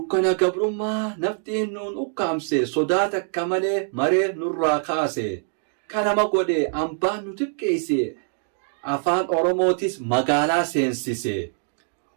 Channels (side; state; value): left; silent; digital silence